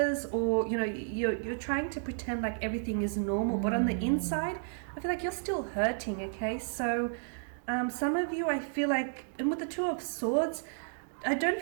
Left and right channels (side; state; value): left; silent; digital silence